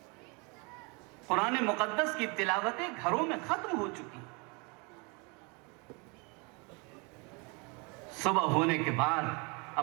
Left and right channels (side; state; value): left; quieter; 30.9 dB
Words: قرآن مقدس کی تلاوتیں گھروں میں ختم ہو چکی۔ صبح ہونے کے بعد